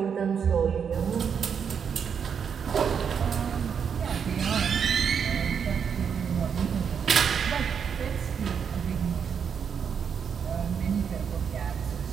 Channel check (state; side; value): quieter; left; 7.1 dB